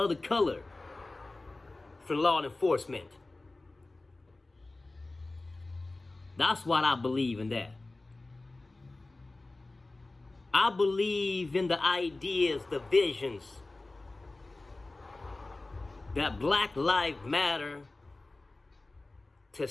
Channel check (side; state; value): right; quieter; 3.1 dB